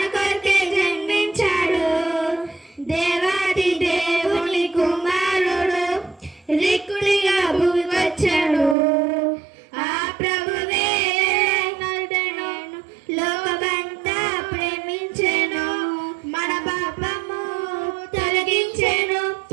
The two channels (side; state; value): left; drops out; at 8.8 s